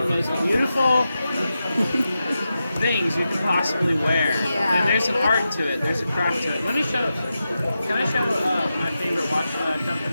the most beautiful things you can possibly wear. Yeah. And there's an art to it. There's a craft to it. Let me show. Can I show my favorite watch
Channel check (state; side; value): inverted; both; correlation -0.90